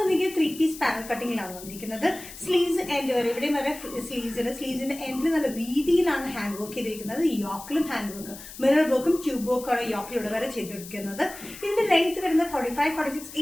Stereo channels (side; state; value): left; noise; hiss, 14 dB below the sound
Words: നിങ്ങൾക്ക് 3 പീസ് പാനൽ കട്ടിങ്ങിലാണ് വന്നിരിക്കുന്നത്. സ്ലീവ്സ് എൻഡ് വരെ ഇവിടെ വരെ സ്ലീവ്സിന്റെ എൻഡിൽ നല്ല വീതിയിലാണ് ഹാൻഡ് വർക്ക് ചെയ്തിരിക്കുന്നത്. യോക്കിലും ഹാൻഡ് വർക്ക്, മിറർ വർക്കും ട്യൂബ് വർക്കും ആണ് യോക്കിലൂടെ വരെ ചെയ്തെടുക്കുന്നത്. ഇതിന്റെ ലെങ്ത് വരുന്നത് 45-46